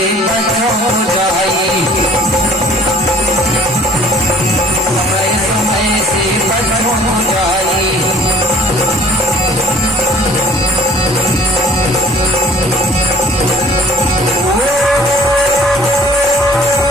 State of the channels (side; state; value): both; normal; correlation 0.52